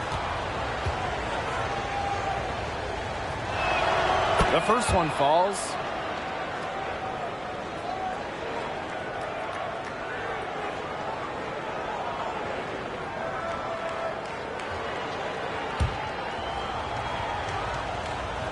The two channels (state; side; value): identical; both; correlation 1.00